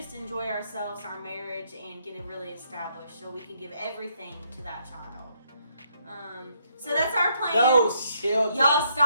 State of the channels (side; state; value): both; inverted; correlation -0.73